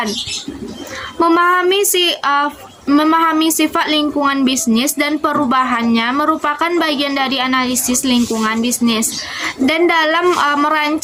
Memahami sifat lingkungan bisnis dan perubahannya merupakan bagian dari analisis lingkungan bisnis dan dalam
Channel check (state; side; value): identical; both; correlation 1.00